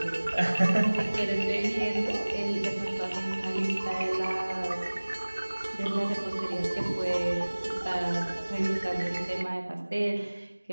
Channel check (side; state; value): both; inverted; correlation -1.00